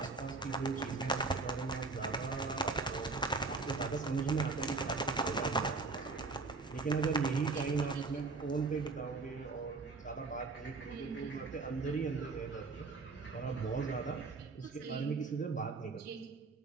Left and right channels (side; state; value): left; quieter; 3.9 dB